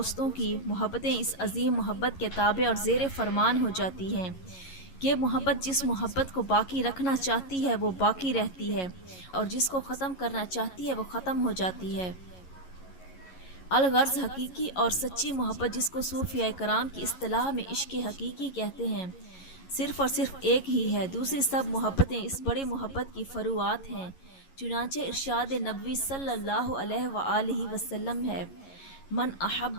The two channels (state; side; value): late; right; 11 ms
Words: کی محبتیں اس عظیم محبت کے تابع اور زیر فرمان ہو جاتی ہیں۔ یہ محبت جس محبت کو باقی رکھنا چاہتی ہے وہ باقی رہتی ہے، اور جس کو ختم کرنا چاہتی ہے وہ ختم ہو جاتی ہے۔ الغرض حقیقی اور سچی محبت، جس کو صوفیاء کرام کی اصطلاح میں عشق حقیقی کہتے ہیں، صرف اور صرف ایک ہی ہے۔ دوسری سب محبتیں اس بڑی محبت کی فروعات ہیں۔ چنانچہ ارشاد نبوی صلی اللہ علیہ وآلہ وسلم ہے من